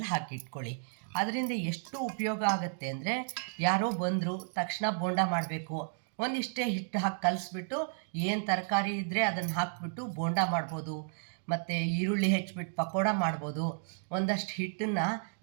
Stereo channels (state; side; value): silent; left; digital silence